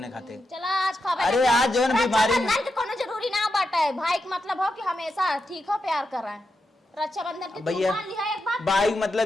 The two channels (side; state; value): both; normal; correlation 0.87